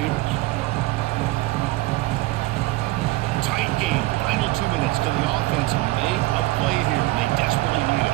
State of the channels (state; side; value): quieter; left; 19.7 dB